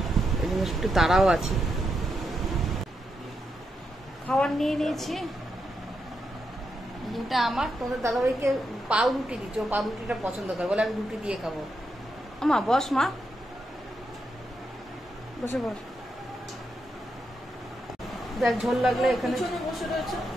এই জন্য একটু তাড়াও আছি। খাবার নিয়ে নিয়েছি, এটা আমার। তোমাদের দাদাভাইকে পাউ রুটি দিচ্ছি, ও পাউ রুটিটা পছন্দ করে, বলে আমি রুটি দিয়ে খাবো। আমা বস, মা বসে বস। দেখ ঝোল লাগলে এখানে বসে রয়েছে।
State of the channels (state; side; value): normal; both; correlation 0.83